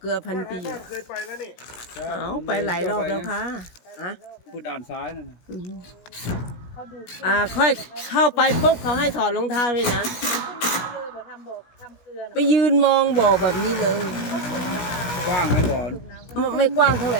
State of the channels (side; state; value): right; late; 17 ms